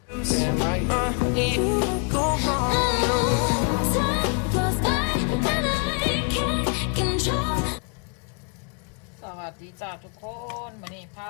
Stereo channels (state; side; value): quieter; right; 36.4 dB